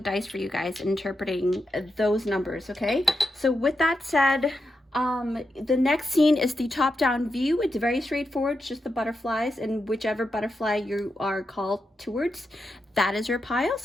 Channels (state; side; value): normal; both; correlation 0.86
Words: for you guys, interpreting those numbers, okay? So with that said, the next scene is the top-down view. It's very straightforward, it's just the butterflies, and whichever butterfly you are called towards, that is your pile.